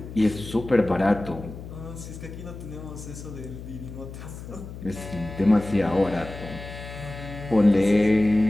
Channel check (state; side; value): noise; left; hum, 12 dB below the sound